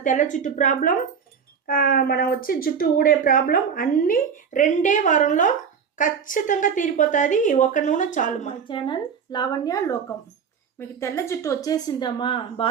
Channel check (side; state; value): left; quieter; 6.8 dB